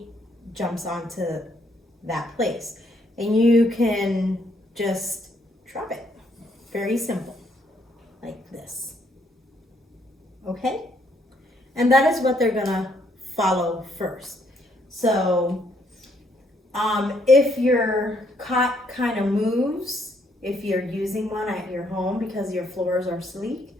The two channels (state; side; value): normal; both; correlation 0.71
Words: jumps onto that place. And you can just drop it. Very simple, like this. Okay? And that is what they're gonna follow first. So, if your cot kind of moves, if you're using one at your home because your floors are sleek,